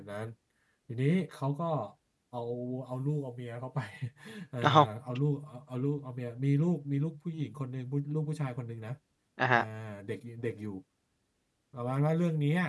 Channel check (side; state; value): both; identical; correlation 1.00